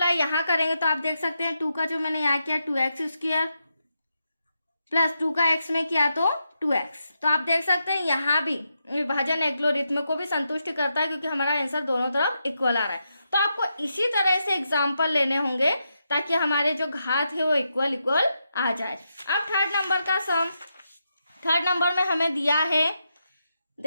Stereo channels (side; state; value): both; inverted; correlation -0.84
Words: यहाँ करेंगे तो आप देख सकते हैं 2 का जो मैंने यहाँ किया 2x² प्लस 2 का x में किया तो 2x। तो आप देख सकते हैं यहाँ भी विभाजन एल्गोरिथ्म को भी संतुष्ट करता है, क्योंकि हमारा आंसर दोनों तरफ इक्वल आ रहा है। तो आपको इसी तरह से एग्जाम्पल लेने होंगे ताकि हमारे जो घात है वो इक्वल आ जाए। अब थर्ड नंबर का सम, थर्ड नंबर में हमें दिया है,